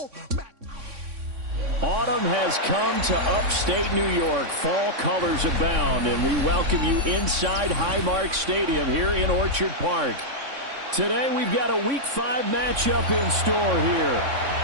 Autumn has come to upstate New York. Fall colors abound, and we welcome you inside Highmark Stadium here in Orchard Park. Today we've got a Week 5 matchup in store here,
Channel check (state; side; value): late; left; 3.6 ms